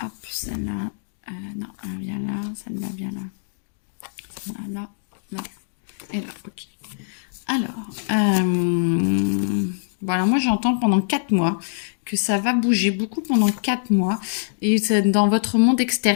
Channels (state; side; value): silent; right; digital silence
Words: hop, celle-là, non, elle vient là, celle-là vient là. Celle-là, là, et là, ok. Alors, voilà, moi j'entends pendant 4 mois que ça va bouger beaucoup pendant 4 mois et c'est dans votre monde